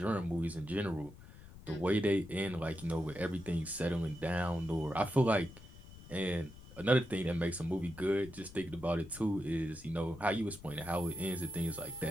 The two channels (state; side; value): noise; left; rumble, 18 dB below the sound